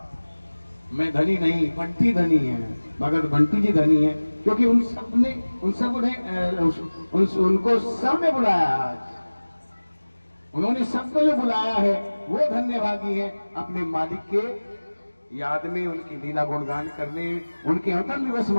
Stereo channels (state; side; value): inverted; both; correlation -1.00